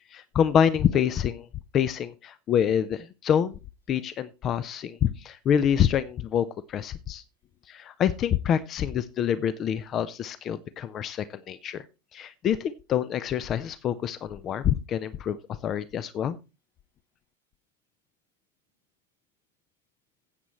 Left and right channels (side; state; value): right; quieter; 8.7 dB